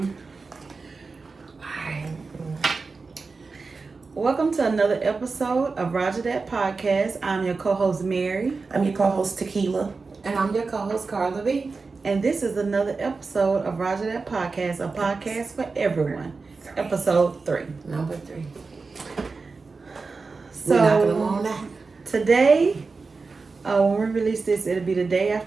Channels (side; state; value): left; quieter; 4.3 dB